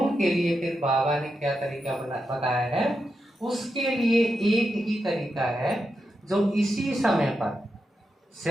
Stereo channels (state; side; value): normal; both; correlation 0.87